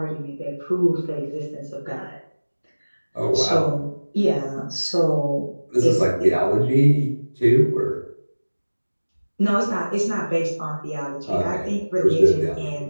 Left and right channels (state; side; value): inverted; both; correlation -1.00